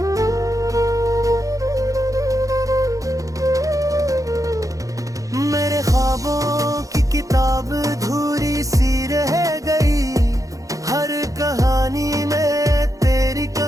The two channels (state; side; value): late; left; 0.16 ms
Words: मेरे ख्वाबों की किताब धूरी सी रह गई, हर कहानी में तेरी